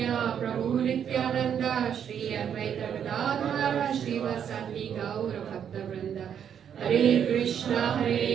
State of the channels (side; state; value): left; quieter; 8.5 dB